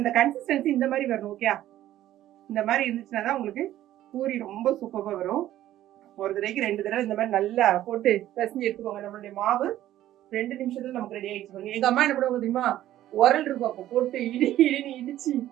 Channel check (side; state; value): left; quieter; 13.3 dB